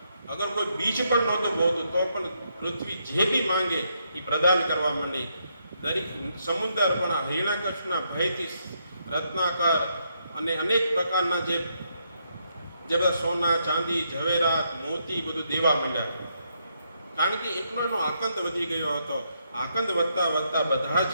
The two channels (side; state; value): both; inverted; correlation -0.77